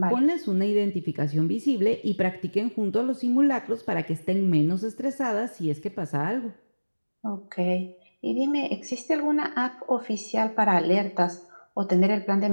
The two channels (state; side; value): inverted; both; correlation -1.00